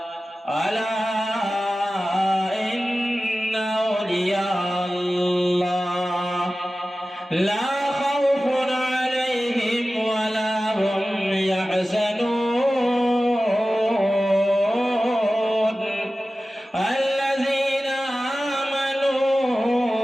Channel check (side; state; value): both; normal; correlation 0.95